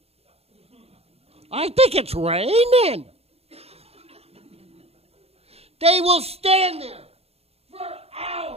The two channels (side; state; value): left; late; 0.29 ms